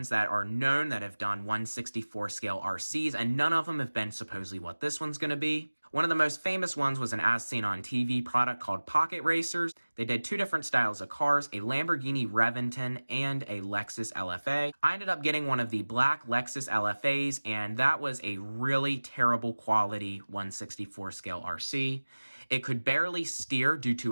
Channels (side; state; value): both; inverted; correlation -1.00